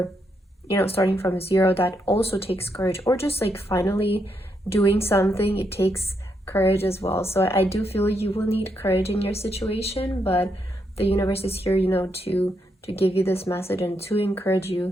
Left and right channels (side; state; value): both; normal; correlation 0.79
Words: starting from zero. That also takes courage. Or just like finally doing something, it takes courage as well. So I do feel you will need courage in your situation, but the universe is here, to give you this message and to encourage